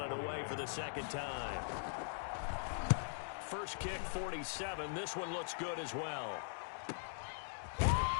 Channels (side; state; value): right; silent; digital silence